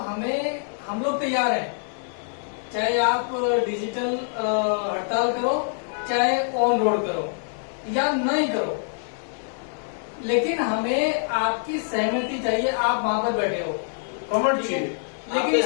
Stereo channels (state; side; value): silent; right; digital silence